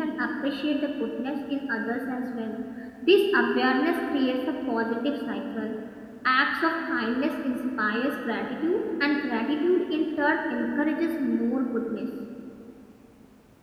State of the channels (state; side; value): identical; both; correlation 1.00